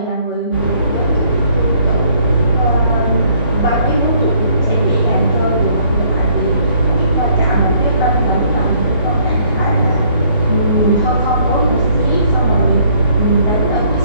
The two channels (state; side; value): inverted; both; correlation -0.64